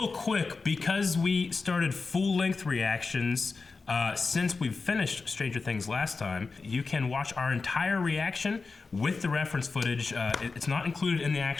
quick, because we started full-length reactions since we've finished Stranger Things last time, you can watch our entire reaction with the reference footage. It's not included in the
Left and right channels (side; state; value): right; quieter; 4.3 dB